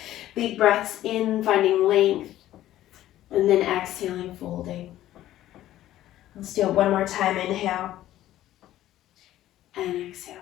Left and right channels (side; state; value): right; quieter; 13.7 dB